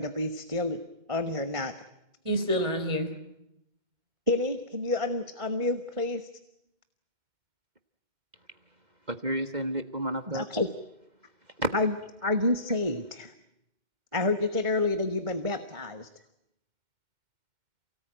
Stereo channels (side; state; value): left; late; 2.1 ms